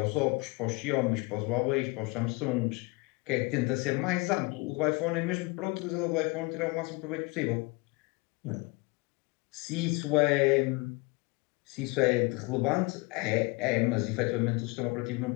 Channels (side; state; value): right; quieter; 26.5 dB